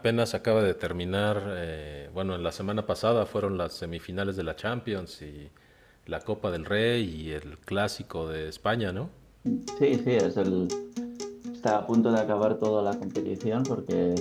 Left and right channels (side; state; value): both; identical; correlation 1.00